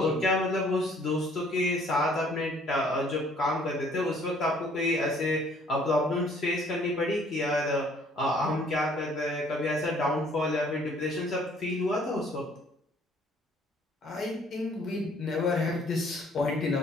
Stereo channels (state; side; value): normal; both; correlation 0.59